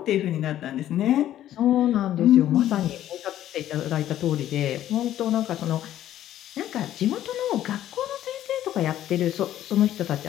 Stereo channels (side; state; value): right; quieter; 12.3 dB